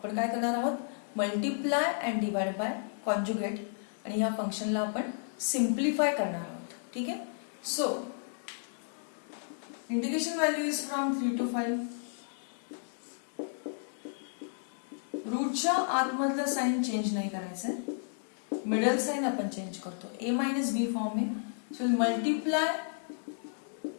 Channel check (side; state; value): right; silent; digital silence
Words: काय करणार आहोत, multiply and divide by conjugate आणि ह्या फंक्शनला आपण सिम्प्लिफाय करणार आहोत. ठीक आहे. So integration value is from 3 to 5. रूटच्या आतमधलं साइन चेंज नाही करायचंय, मिडल साइन आपण चेंज करतो. a मायनस बी फॉर्म आहे. So multiply